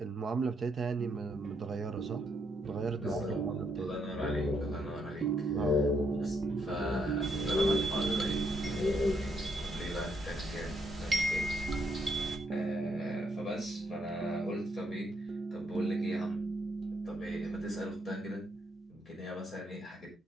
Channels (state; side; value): normal; both; correlation 0.75